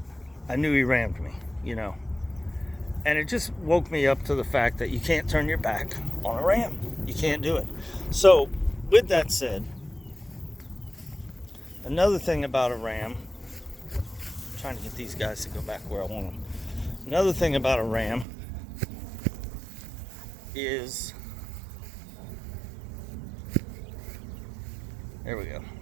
knew he rammed me, you know. And it just woke me up to the fact that you can't turn your back on a ram. You can't do it. So with that said, another thing about a ram, I'm trying to get these guys to go back where I want them. Another thing about a ram is, there we go.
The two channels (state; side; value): drops out; left; at 18.2 s